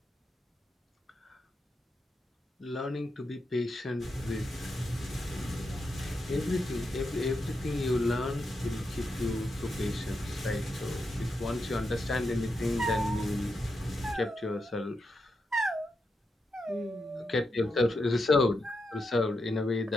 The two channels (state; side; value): normal; both; correlation 0.85